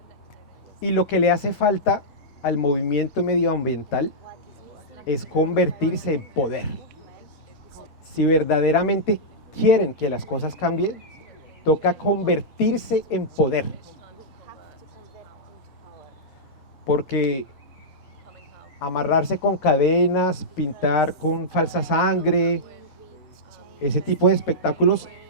Y lo que le hace falta al movimiento medioambiental es convertirse en poder. Si verdaderamente quieren que las cosas cambien, toca convertirse en poder. Porque amarrarse con cadenas, pintar con falsa sangre, ese tipo de espectáculos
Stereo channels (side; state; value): both; normal; correlation -0.10